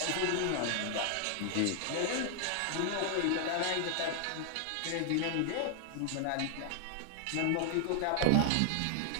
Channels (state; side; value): different; both; correlation 0.00